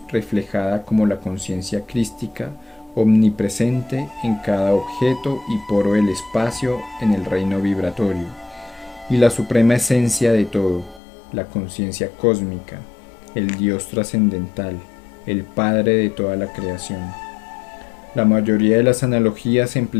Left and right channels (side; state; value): right; drops out; at 11.0 s